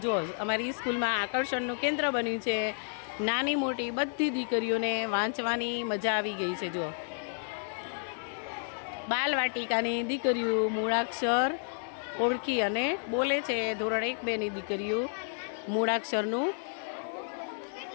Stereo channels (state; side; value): silent; right; 57 dB below the other